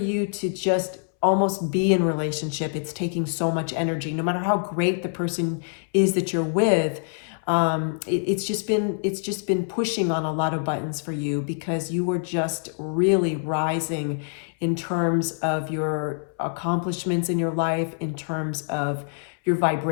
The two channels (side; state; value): right; silent; 62 dB below the other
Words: to just almost be in relationship. It's taking so much energy, no matter how great the person is that you're with. It's just been pushing on a lot of buttons for you because you were just really rising in terms of your accomplishments in your life, in terms of your